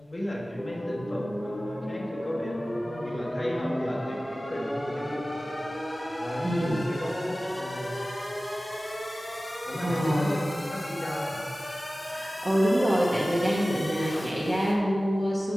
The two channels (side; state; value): both; normal; correlation 0.96